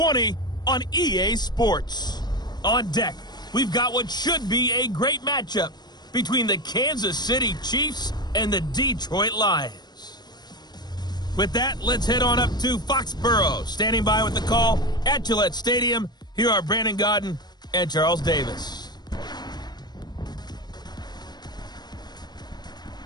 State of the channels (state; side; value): late; right; 0.20 ms